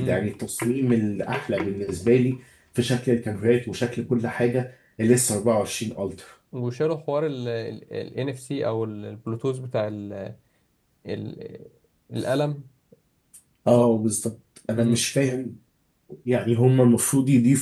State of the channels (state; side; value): identical; both; correlation 1.00